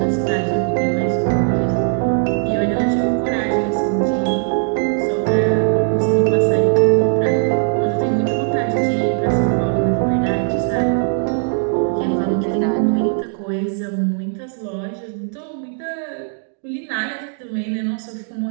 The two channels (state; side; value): silent; left; digital silence